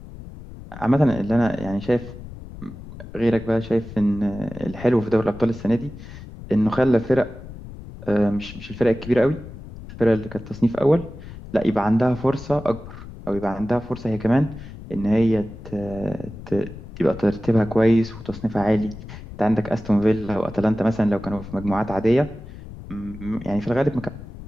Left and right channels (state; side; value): noise; left; rumble, 14 dB below the sound